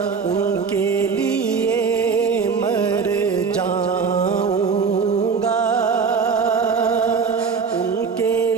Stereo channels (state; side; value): quieter; left; 5.5 dB